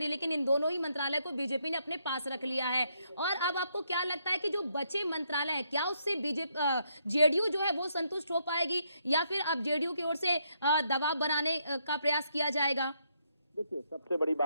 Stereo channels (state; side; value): inverted; both; correlation -0.75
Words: लेकिन इन दोनों ही मंत्रालय को बीजेपी ने अपने पास रख लिया है। और अब आपको क्या लगता है कि जो बचे मंत्रालय है, क्या उससे जेडीयू जो है वो संतुष्ट हो पाएगी या फिर अब जेडीयू की ओर से दबाव बनाने का प्रयास किया जाएगा? देखिए, सबसे बड़ी